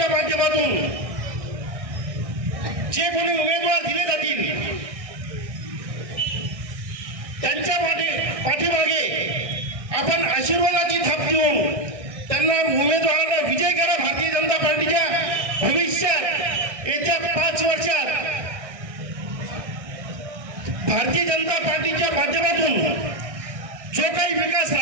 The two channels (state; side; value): late; left; 1.6 ms